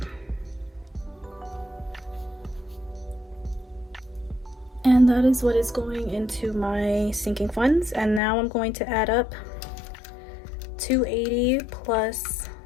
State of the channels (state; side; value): drops out; right; at 8.2 s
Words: And that is what is going into my sinking funds. And now I'm going to add up 280 plus